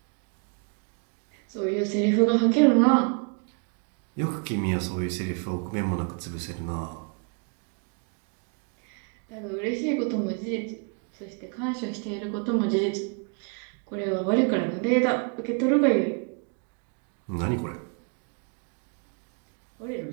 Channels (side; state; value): left; quieter; 38.0 dB